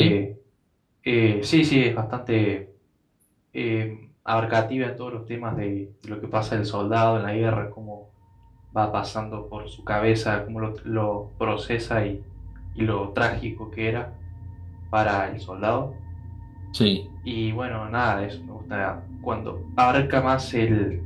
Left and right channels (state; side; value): identical; both; correlation 1.00